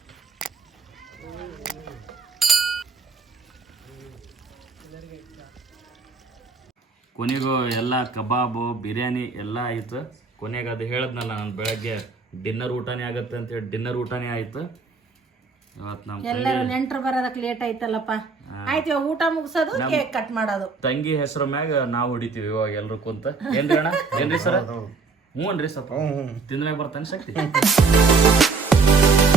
ಕೊನೆಗೂ ಎಲ್ಲ ಕಬಾಬು ಬಿರಿಯಾನಿ ಎಲ್ಲ ಆಯಿತು. ಕೊನೆಗೆ ಅದು ಹೇಳಿದ್ನಲ್ಲ ನಾನು ಬೆಳಗ್ಗೆ ಡಿನ್ನರ್ ಊಟನೇ ಆಗುತ್ತೆ ಅಂತ ಹೇಳಿ, ಡಿನ್ನರ್ ಊಟನೇ ಆಯಿತು ಇವತ್ತು. ನಮ್ಮ ಎಲ್ಲರೂ ನೆಂಟರು ಬರೋದಕ್ಕೆ ಲೇಟ್ ಆಯ್ತಲ್ಲಪ್ಪ. ಆಯ್ತು, ಇವಾಗ ಊಟ ಮುಗಿಸೋದು, ಕೇಕ್ ಕಟ್ ಮಾಡೋದು. ತಂಗಿ ಹೆಸರು ಮ್ಯಾಗ ನಾವು ಹೊಡಿತೀವಿ ಇವಾಗ ಎಲ್ರು ಕುಂತ. ಏನ್ರಿ ಅಣ್ಣ? ಏನ್ರಿ ಸರ? ಹ್ಞೂ ಅನ್ರಿ ಸ್ವಲ್ಪ ತಿಂದ್ಮ್ಯಾಗ ಬರ್ತಾನೆ ಶಕ್ತಿ.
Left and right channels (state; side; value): quieter; left; 4.5 dB